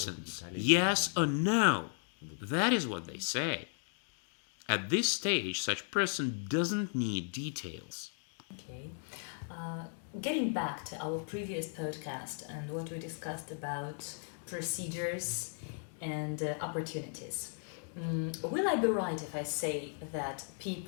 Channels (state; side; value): silent; right; 54 dB below the other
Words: yes or no. That is what they say. At this stage, such person doesn't need details. Okay. Getting back to our previous podcast and what we discussed about procedures and opportunities. Will I be right if I say that